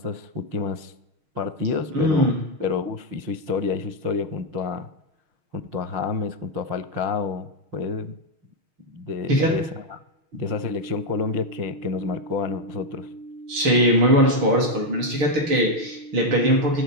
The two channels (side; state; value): left; late; 6.4 ms